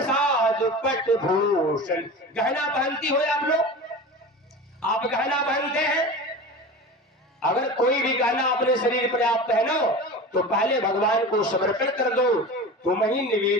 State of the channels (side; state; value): both; normal; correlation 0.32